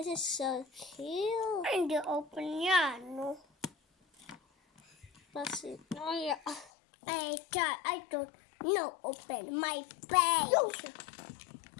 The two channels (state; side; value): drops out; right; at 6.7 s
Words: is so cute. And the open yan, no? Basti. Oh, yeah. I thought, no, open my page.